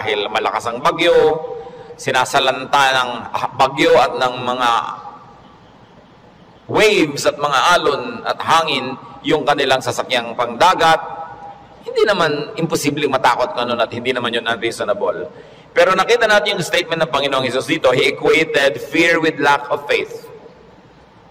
malakas ang bagyo, sinasalanta ng bagyo at ng mga waves at mga alon at hangin yung kanilang sasakyang pangdagat. Hindi naman imposibleng matakot ka nun at hindi naman yun unreasonable. Pero nakita natin yung statement ng Panginoong Hesus dito, He equated fear with lack of faith.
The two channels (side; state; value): both; identical; correlation 1.00